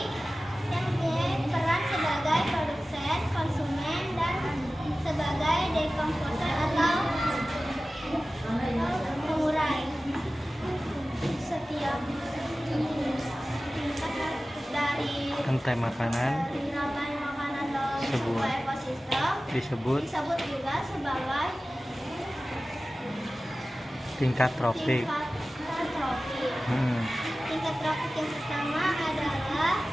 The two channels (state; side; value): normal; both; correlation 0.96